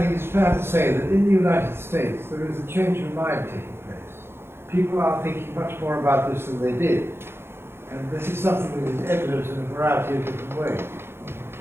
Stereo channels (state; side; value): late; left; 0.11 ms